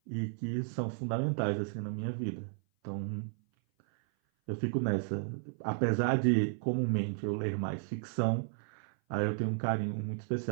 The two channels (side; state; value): left; silent; 55 dB below the other